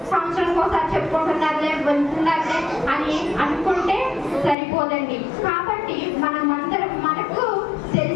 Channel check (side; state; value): right; drops out; at 4.5 s